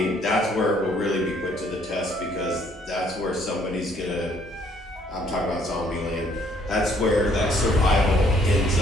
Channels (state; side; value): normal; both; correlation 0.64